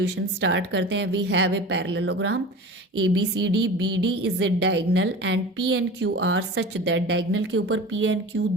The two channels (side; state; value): both; normal; correlation 0.35